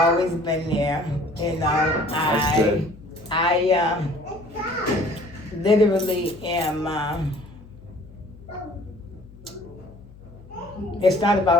been there. That's good. I literally am. It's not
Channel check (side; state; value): left; noise; hum, 21 dB below the sound